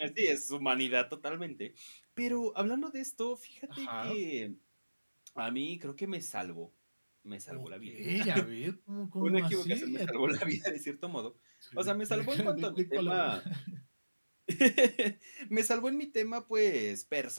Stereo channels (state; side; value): inverted; both; correlation -1.00